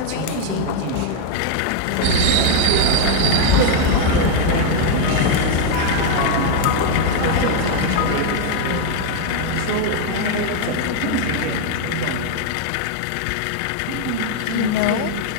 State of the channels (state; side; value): different; both; correlation 0.01